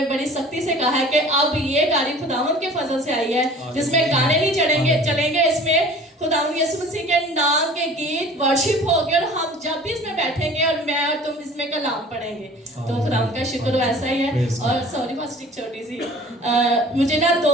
بڑی سختی سے کہا ہے کہ اب یہ گاڑی خداوند کے فضل سے آئی ہے جس میں گانے نہیں چلیں گے, اس میں خداوند یسوع مسیح کے نام کے گیت ورشپ ہوگی, اور ہم جب بھی اس میں بیٹھیں گے اور میں اور تم اس میں کلام پڑھیں گے. تو خداوند کا شکر ویسا ہی ہے. اور سوری فاسٹ چھوٹی سی, مجھے نا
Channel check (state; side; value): normal; both; correlation 0.46